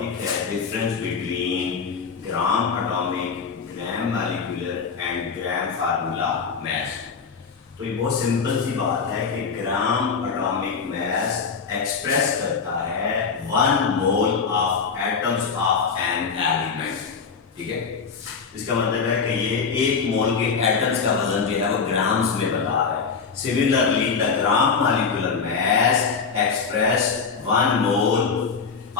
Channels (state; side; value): quieter; right; 5.5 dB